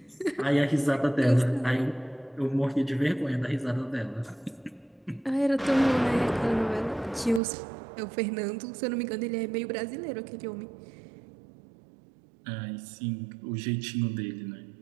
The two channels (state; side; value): drops out; left; at 7.4 s